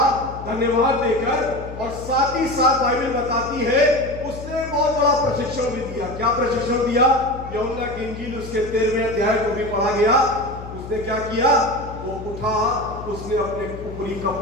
धन्यवाद देकर, और साथ ही साथ बाइबल बताती है उसने बहुत बड़ा प्रशिक्षण भी दिया। क्या प्रशिक्षण दिया? यूहन्ना की इंजील उसके 13वें अध्याय को भी पढ़ा गया। उसने क्या किया? वो उठा, उसने अपने ऊपरी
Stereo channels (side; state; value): left; noise; hum, 12 dB below the sound